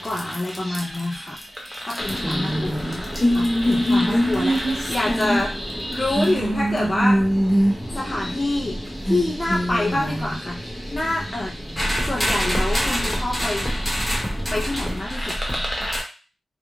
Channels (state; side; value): normal; both; correlation 0.96